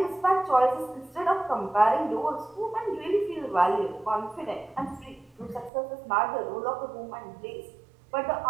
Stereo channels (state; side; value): drops out; left; at 5.7 s